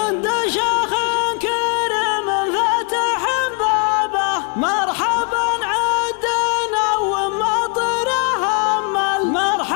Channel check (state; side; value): quieter; right; 36.6 dB